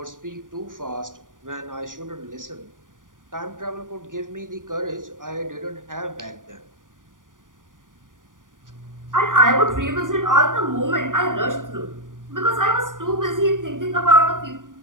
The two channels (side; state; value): left; late; 0.88 ms